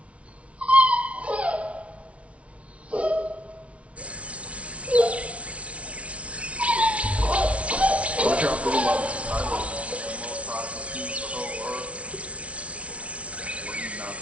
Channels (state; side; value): late; left; 0.063 ms